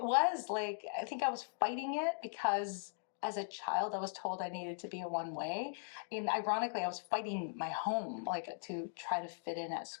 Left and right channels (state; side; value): silent; right; digital silence